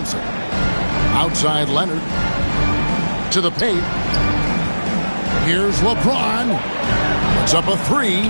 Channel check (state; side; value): inverted; both; correlation -1.00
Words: Outside Leonard. To the paint. Here's LeBron. It's up a 3.